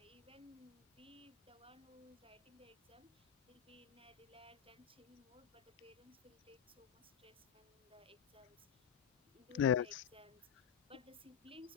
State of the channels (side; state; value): right; quieter; 8.4 dB